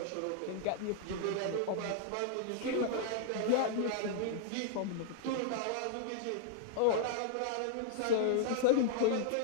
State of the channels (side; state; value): both; different; correlation -0.01